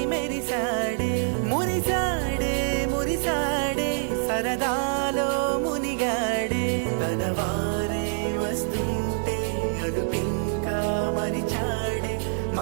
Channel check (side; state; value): left; silent; digital silence